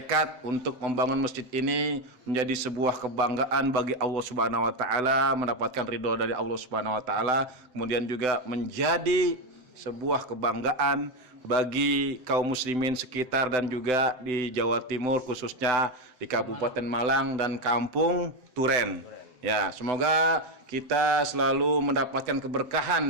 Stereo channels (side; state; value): left; late; 7.9 ms